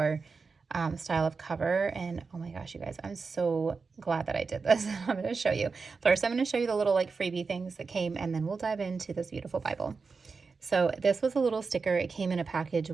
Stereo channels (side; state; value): left; quieter; 4.7 dB